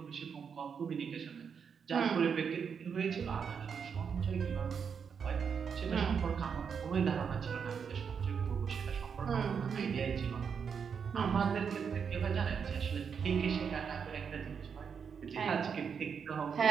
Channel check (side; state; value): left; quieter; 6.7 dB